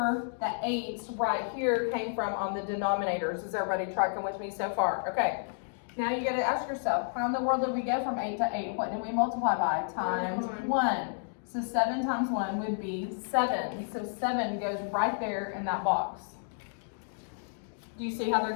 the 8 right here came from on the denominators. Is everybody tracking with me so far? Okay. Now you gotta ask yourself, how in the world did we go from 8 to 8? What did we multiply by? Times 1. So 7 times 1 would be 7. So 7 goes right there in that box. Do you see how they're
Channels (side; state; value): right; silent; digital silence